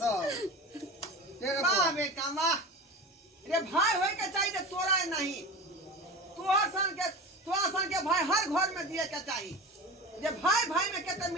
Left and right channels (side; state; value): both; normal; correlation 0.31